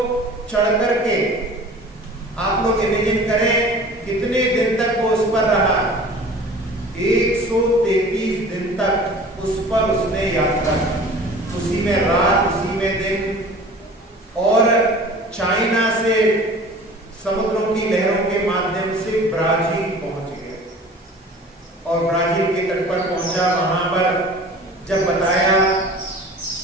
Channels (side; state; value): both; normal; correlation 0.43